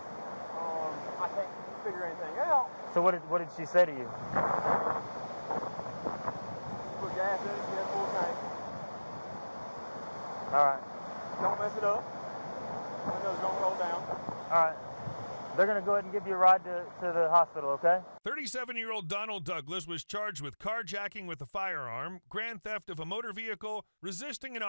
I can't figure anything out. So what did she say to you? Put gas in it, she had full tank. All right. Don't mess it up. Windows don't roll down. All right. They're going to go ahead and give you a ride to the hospital, okay? 37-year-old Donald Douglas was charged with carjacking with a firearm, grand theft of a motor vehicle, resisting an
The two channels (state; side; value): inverted; both; correlation -1.00